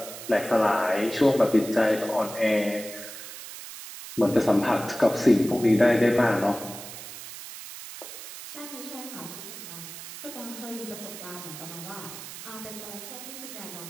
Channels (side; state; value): right; noise; hiss, 12 dB below the sound